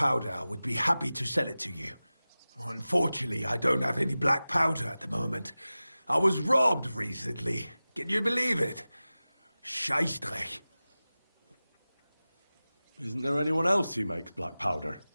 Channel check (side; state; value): both; inverted; correlation -0.97